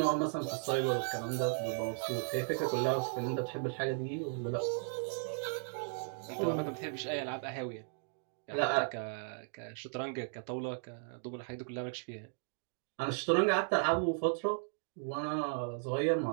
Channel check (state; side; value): silent; left; digital silence